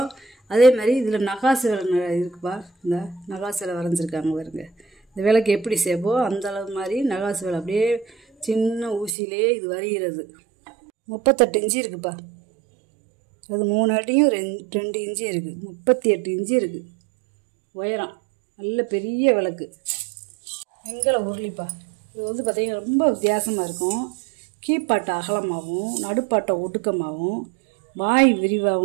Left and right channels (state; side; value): drops out; left; at 9.2 s